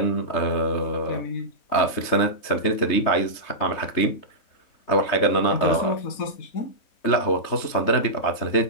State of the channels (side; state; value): right; late; 3.3 ms